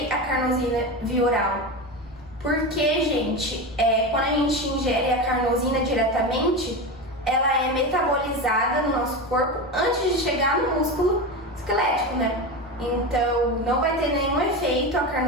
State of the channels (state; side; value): normal; both; correlation 0.21